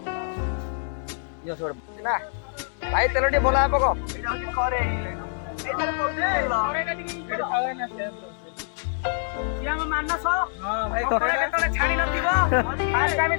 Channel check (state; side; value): silent; right; digital silence